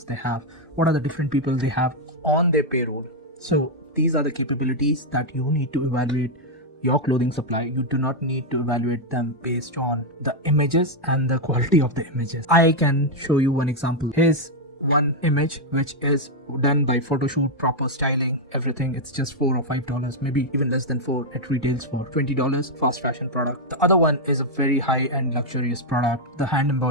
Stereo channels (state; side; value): normal; both; correlation 0.00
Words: they have? What are the different people they have on their payroll? So these are the capabilities that you need to evaluate your clothing supply. You do not need to evaluate them based on the images and the quality of the images. I can show you one example. Here's one image which is done by photo shoot, proper styling, everything. It's just $4 or $5, maybe even less than $4. It retails for $20. Fast fashion product. The other one is a very high-end luxurious product. The hand